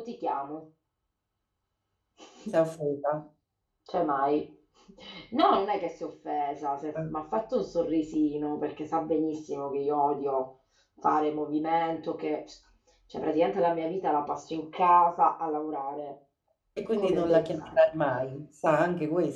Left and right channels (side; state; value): both; identical; correlation 1.00